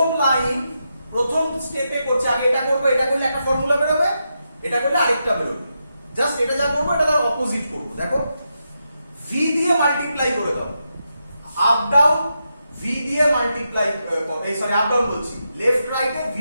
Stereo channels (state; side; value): inverted; both; correlation -0.85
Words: লাইন প্রথম স্টেপে করছি, আগে এটা করবো, এটা করলে একটা ফর্মুলা বেরোবে, এটা করলে আরেকটা বেরোবে। জাস্ট এটা যা করবো এটা তার অপোজিট করবো। দেখো, v দিয়ে মাল্টিপ্লাই করে দাও, আপ ডাউন v দিয়ে মাল্টিপ্লাই, সরি আপ ডাউন বলছি, লেফট রাইটে v